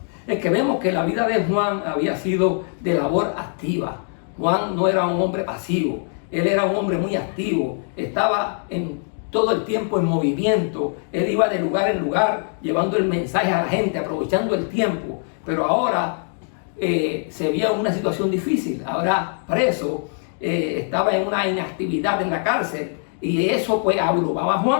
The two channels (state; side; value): silent; right; 58 dB below the other